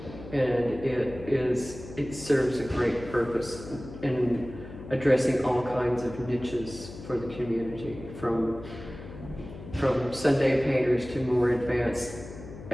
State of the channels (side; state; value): left; noise; hum, 13 dB below the sound